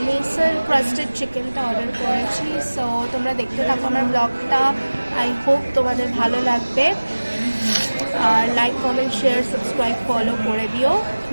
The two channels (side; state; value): both; inverted; correlation -1.00